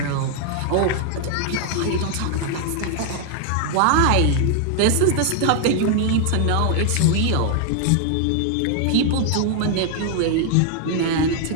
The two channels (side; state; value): both; different; correlation 0.00